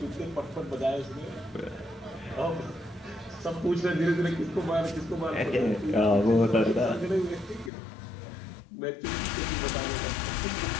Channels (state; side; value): drops out; right; at 7.7 s